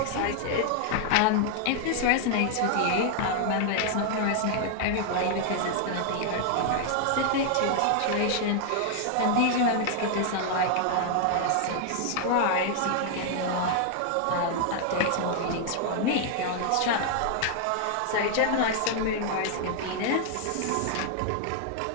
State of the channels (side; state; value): both; different; correlation 0.00